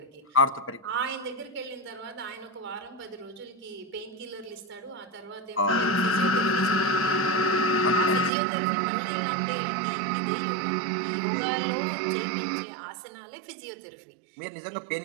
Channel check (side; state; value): left; drops out; at 8.3 s